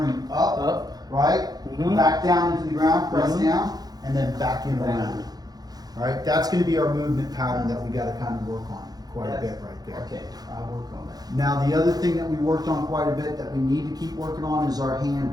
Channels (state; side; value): late; left; 0.19 ms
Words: up, Up. right? Mhm. Back down into the ground, press Mhm. down, and then back in Down. around. Right? That's going to be our movement pattern that we got to kind of work on quite a Yes. bit right there. Okay, I'll work on that. Now, the other thing that we worked on quite a bit that we need to keep working on is our